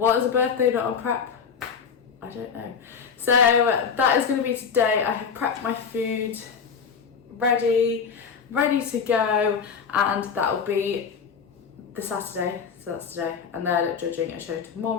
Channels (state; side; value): quieter; right; 6.3 dB